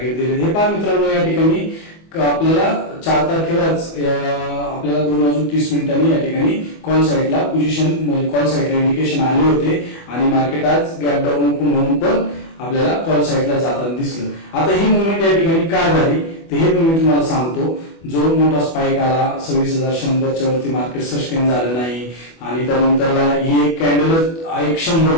दिले हे पहा मित्रांनो. या ठिकाणी आपल्याला 4 तारखेलाच आपल्याला 2:30 या ठिकाणी कॉल साईडला पोझिशन कॉल साईडला इंडिकेशन आले होते आणि मार्केट आज गॅप डाऊन ओपन होऊन पण आपल्याला कॉल साईडला जाताना दिसलं. आता ही मुवमेंट या ठिकाणी का झाली ते हे मी तुम्हाला सांगतो. जो मोठा स्पाइक आला 26,100 वरती मार्केट सस्टेन झालं नाही आणि त्यानंतरला ही एक कॅन्डल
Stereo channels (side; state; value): right; late; 24 ms